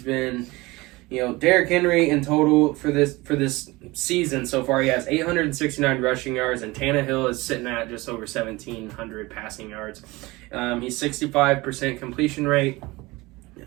been, Derrick Henry in total for this season so far, he has 869 rushing yards, and Tannehill is sitting at just over 1,700 passing yards. He's 65% completion rate.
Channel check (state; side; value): quieter; left; 21.8 dB